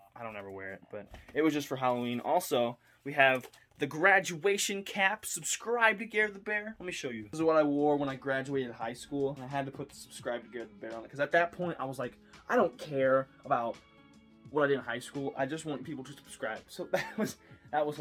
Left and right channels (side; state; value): both; identical; correlation 1.00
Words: ever wear it, but it was just for Halloween. Also, we have the graduation cap. Subscribe to Gare the Bear. Let me show you. This is what I wore when I graduated high school. And I had to put the subscribe to Gare the Bear on it because at that point I was like, I don't care about what I did in high school. I just want people to subscribe. So that was